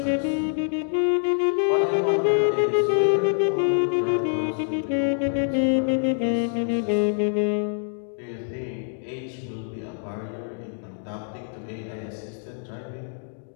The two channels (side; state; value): right; silent; digital silence